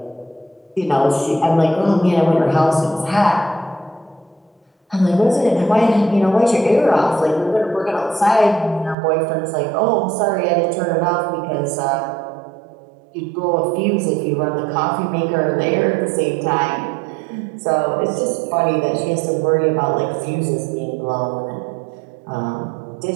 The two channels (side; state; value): left; drops out; at 9.0 s